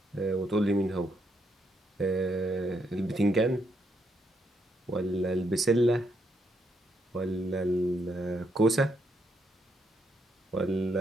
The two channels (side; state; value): both; normal; correlation 0.77